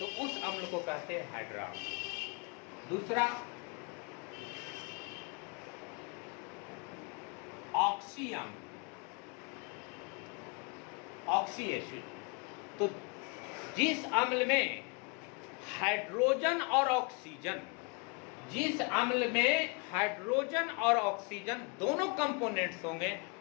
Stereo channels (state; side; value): quieter; right; 33.2 dB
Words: उस अम्ल को कहते हैं हाइड्रा अम्ल। दूसरा ऑक्सी अम्ल, ऑक्सी एसिड। तो जिस अम्ल में हाइड्रोजन और ऑक्सीजन, जिस अम्ल में हाइड्रोजन और ऑक्सीजन दोनों कंपोनेंट्स होंगे,